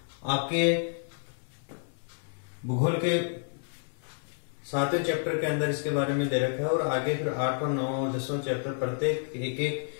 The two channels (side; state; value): right; silent; 58 dB below the other